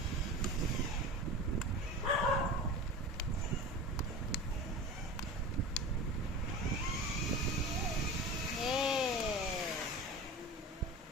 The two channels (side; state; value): both; normal; correlation 0.32